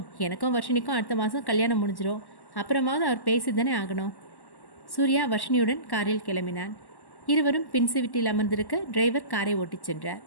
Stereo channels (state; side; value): late; right; 1.1 ms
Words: எனக்கும் வர்ஷினிக்கும் அடுத்த மாதம் கல்யாணம் முடிஞ்சிடும். அப்புறமாவது அவர் பேசி தானே ஆகணும். சூர்யா வர்ஷினியுடன் காரில் கிளம்பினான். இருவரும் பின் சீட்டில் அமர்ந்திருக்க டிரைவர் காரை ஓட்டிச் சென்றார்.